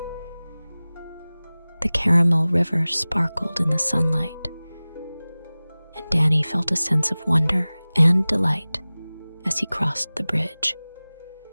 The caramel river sparkled in the sunlight, and Danny felt a sense of wonder and delight as he crossed the bridge.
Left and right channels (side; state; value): both; inverted; correlation -0.99